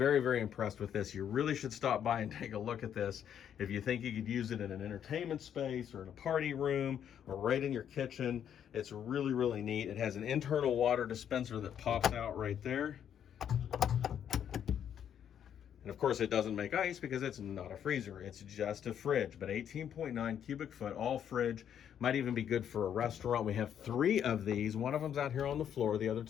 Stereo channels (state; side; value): quieter; right; 9.2 dB